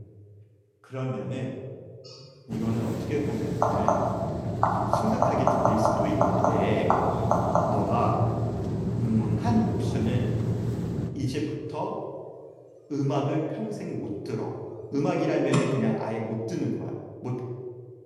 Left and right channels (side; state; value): both; identical; correlation 1.00